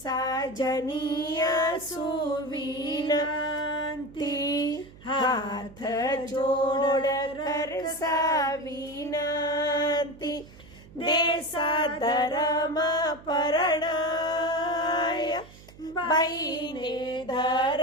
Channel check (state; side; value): noise; right; hum, 21 dB below the sound